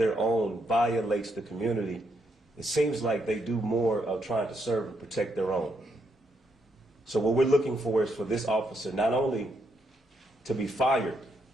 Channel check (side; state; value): both; normal; correlation 0.78